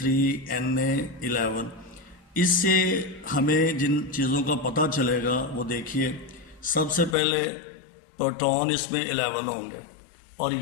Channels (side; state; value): right; drops out; at 7.2 s